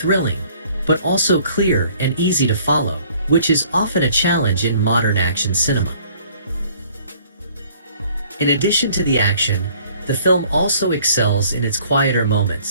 but also clear and easy to follow, which is often a challenge in modern action cinema. In addition to the action, the film also excels in its quieter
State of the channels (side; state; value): both; inverted; correlation -0.57